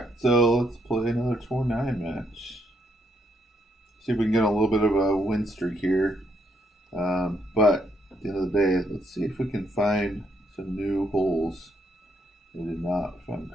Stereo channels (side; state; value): both; normal; correlation 0.74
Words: so let's play another Tour 9 match. See if we can get a little bit of a win streak here. But at the end of the day, let's see if we can find some new holes. We did not find